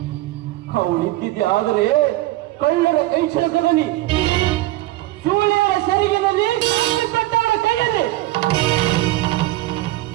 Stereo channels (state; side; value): quieter; left; 17.3 dB